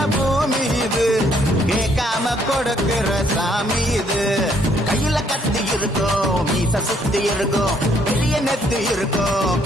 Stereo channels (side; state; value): both; normal; correlation 0.67